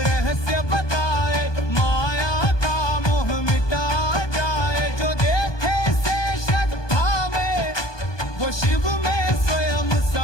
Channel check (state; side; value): late; right; 1.2 ms